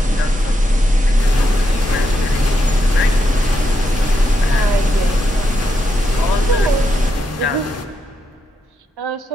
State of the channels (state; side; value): normal; both; correlation 0.82